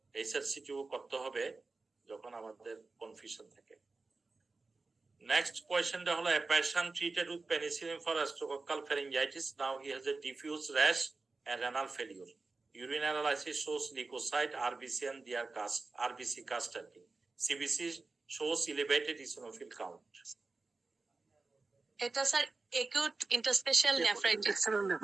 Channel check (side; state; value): left; quieter; 3.7 dB